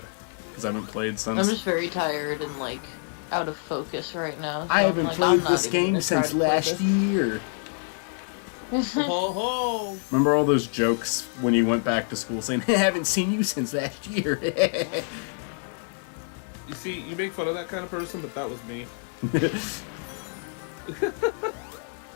because I haven't played since. I'm just very tired and like out of focus right now. So I haven't played this game since last year. Remember all those jokes when you went back to school saying, I haven't seen you since last year? You see, you make fun of that kind of person, but that was me. The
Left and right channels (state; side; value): silent; right; 57 dB below the other